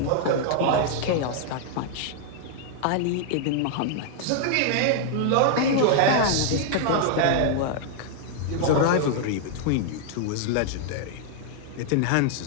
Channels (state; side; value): different; both; correlation 0.00